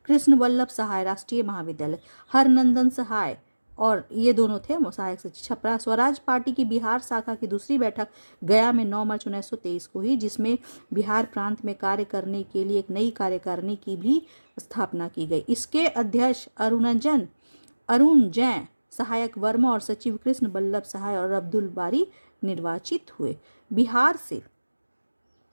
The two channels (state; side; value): inverted; both; correlation -1.00